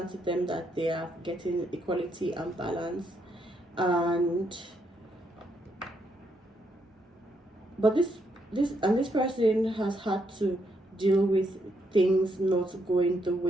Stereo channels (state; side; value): normal; both; correlation 0.76